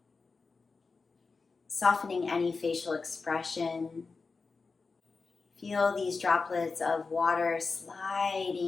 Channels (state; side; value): quieter; right; 4.4 dB